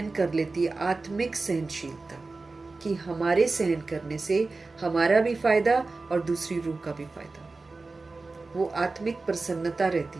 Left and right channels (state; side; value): quieter; left; 3.7 dB